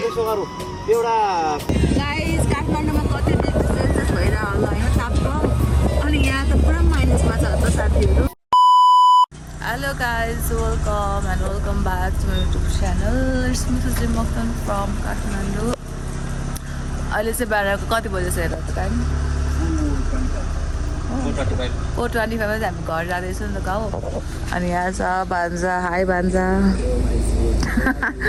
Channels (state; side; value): identical; both; correlation 1.00